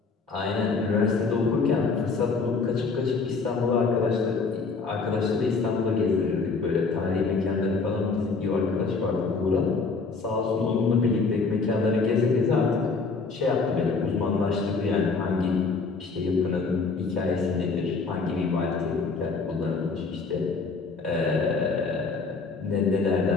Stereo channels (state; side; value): quieter; right; 4.4 dB